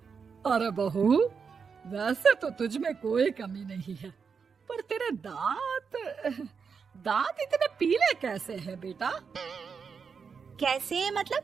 अरे बहू, वैसे तो तुझ में कोई कमी नहीं है, पर तेरे दांत इतने पीले कैसे हैं बेटा? कैसे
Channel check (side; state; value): left; quieter; 5.9 dB